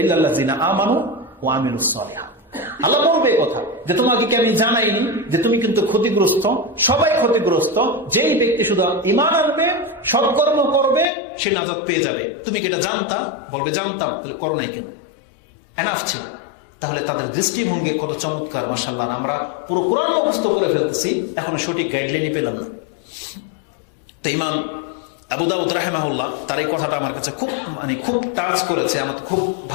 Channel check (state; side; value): drops out; right; at 11.1 s